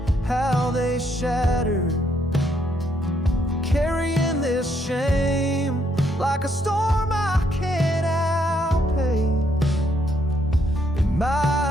how they shattered. Carrying this shame like a storm I can't outpace. In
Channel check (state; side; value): normal; both; correlation 0.73